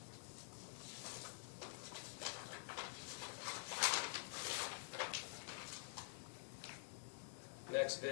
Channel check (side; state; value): right; silent; digital silence